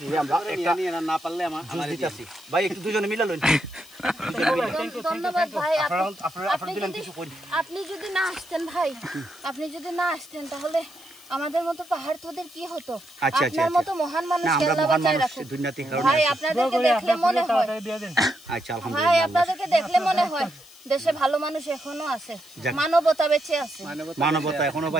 আমরা একটা না পারলে আমার দিতেছি ভাই, একটু দুজনে মিলা লইন। ধন্যবাদ ভাই। আপনি যদি না আসতেন ভাই, আপনি যদি না আসতেন তাহলে আমাদের মতো পাহাড় তোদের কি হতো? আপনার মতো মহান মানুষ আল্লাহ বাঁচায় রাখুক ভাই। আপনাদেরকে দেখলে মনে হয়, আচ্ছা ভাই আপনাদেরকে দেখলে মনে হয় দেশে ভালো মানুষ এখনো আছে, মানবতা বেঁচে আছে, মানবতা এখনো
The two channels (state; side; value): noise; left; hiss, 23 dB below the sound